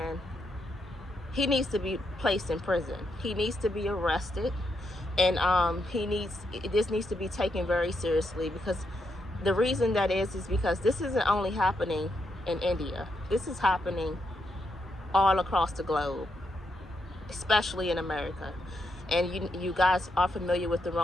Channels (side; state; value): both; normal; correlation 0.81